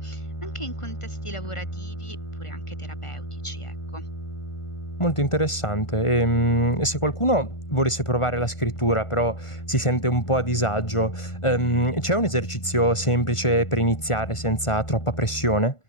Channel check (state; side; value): late; right; 1.5 ms